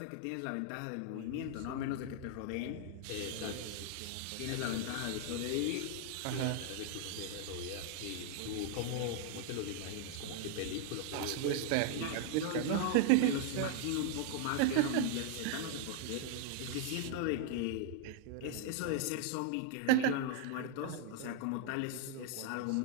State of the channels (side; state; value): both; different; correlation 0.00